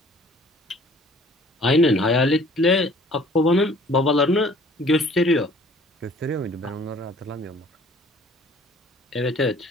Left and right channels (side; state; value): both; normal; correlation 0.53